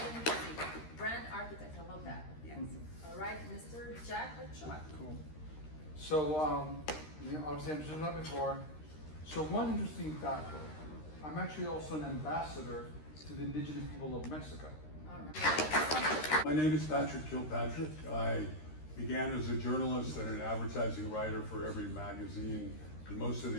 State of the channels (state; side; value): late; right; 13 ms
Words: interesting. Brand architect, I love that. Yes. All right, Mr. Jack Ochoa. Cool. So, obviously I've just done that before. So one interesting factor, I'm actually also an ambassador to the indigenous people of Mexico. My name is Patrick Kilpatrick. I began as a journalist and an advertising writer for every magazine and most of